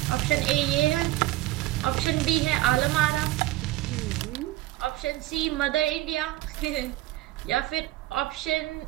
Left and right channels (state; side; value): quieter; left; 16.9 dB